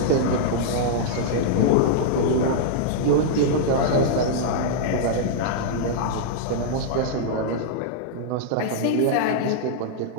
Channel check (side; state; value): both; different; correlation -0.02